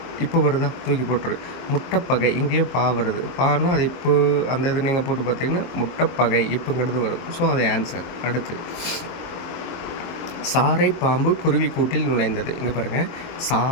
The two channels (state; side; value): late; right; 23 ms